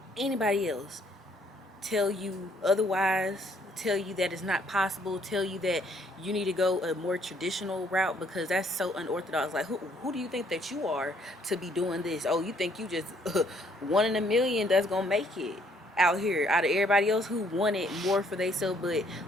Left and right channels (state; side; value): normal; both; correlation 0.66